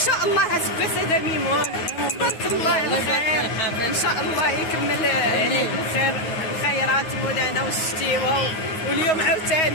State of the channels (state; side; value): late; right; 9.5 ms